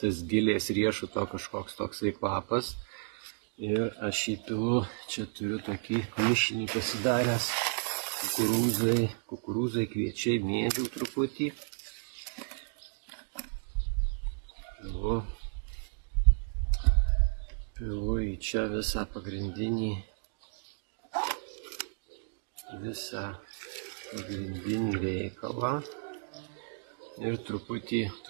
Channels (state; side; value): silent; left; digital silence